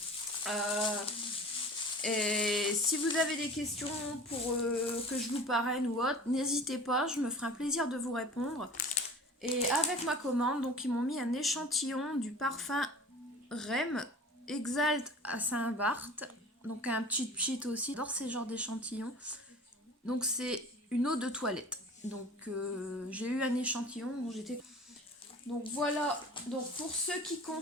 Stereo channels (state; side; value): normal; both; correlation 0.41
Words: Et si vous avez des questions pour que je vous parraine ou autre, n'hésitez pas, je me ferai un plaisir de vous répondre. Et avec ma commande, donc ils m'ont mis un échantillon du parfum Rem Exalt à Saint-Barth. Donc un petit cheat aussi, j'adore ces genres d'échantillons. Donc c'est une eau de toilette. Donc j'ai eu un échantillon dont j'étais... Donc voilà, donc pour ce qui